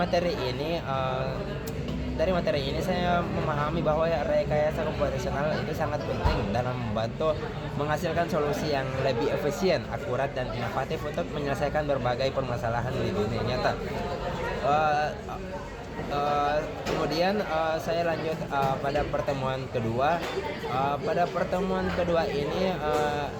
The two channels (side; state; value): both; identical; correlation 1.00